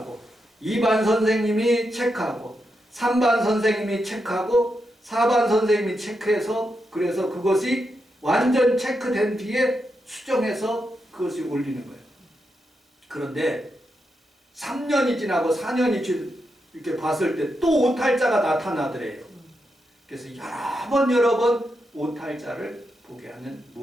2반 선생님이 체크하고 3반 선생님이 체크하고 4반 선생님이 체크해서, 그래서 그것이 완전 체크된 뒤에 수정해서 그것이 올리는 거예요. 그런데 3년이 지나고 4년이 이렇게 봤을 때 또 오탈자가 나타나더래요. 그래서 여러 번 오탈자를 보게 하는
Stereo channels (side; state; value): both; normal; correlation 0.85